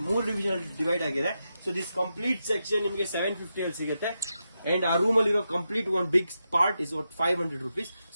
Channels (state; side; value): inverted; both; correlation -0.87